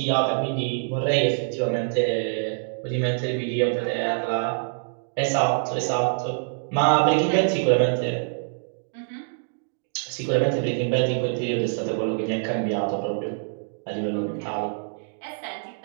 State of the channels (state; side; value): silent; left; digital silence